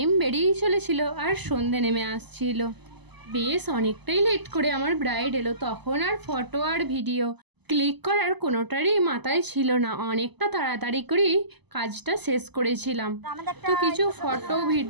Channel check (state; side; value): late; left; 0.99 ms